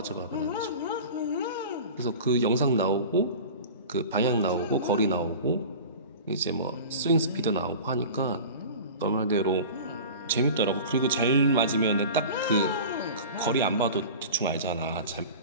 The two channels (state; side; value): inverted; both; correlation -0.36